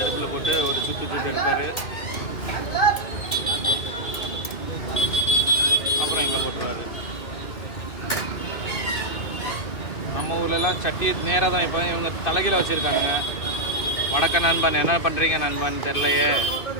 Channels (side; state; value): right; late; 2.4 ms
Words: போட்டு ஒரு சுட்டு எடுப்பார். அப்புறம் இங்கே போட்டுருவார். நம்ம ஊர்லலாம் சட்டி நேராக தான். இப்போ இவங்க தலைகீழ வச்சுருக்கானுங்க. வடக்க நண்பன் என்ன பண்ணுறீங்க நண்பன் தெரிலையே.